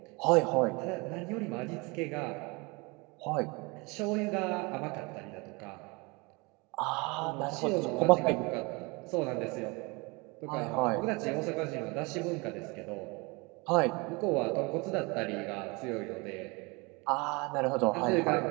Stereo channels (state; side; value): quieter; left; 27.3 dB